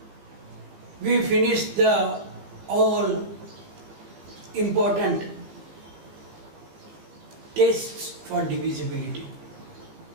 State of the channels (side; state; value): left; late; 16 ms